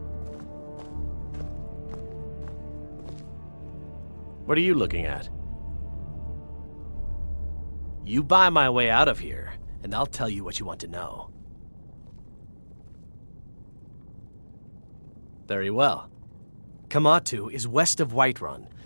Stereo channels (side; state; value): both; inverted; correlation -1.00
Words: What are you looking at? You buy my way out of here, and I'll tell you what you want to know. Very well. Kamatu is west of Whiterun.